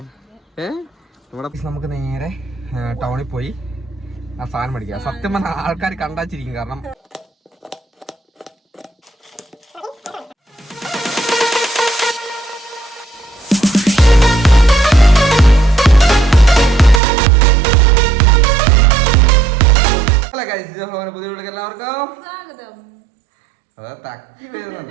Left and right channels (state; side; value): drops out; left; at 17.0 s